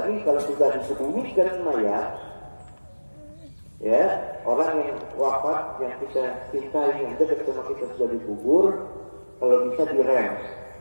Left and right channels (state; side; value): inverted; both; correlation -1.00